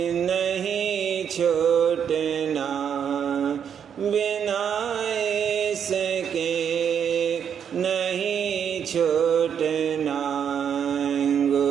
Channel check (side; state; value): left; quieter; 8.0 dB